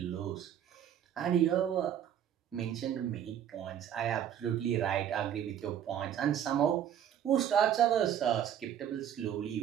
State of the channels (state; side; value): quieter; left; 9.8 dB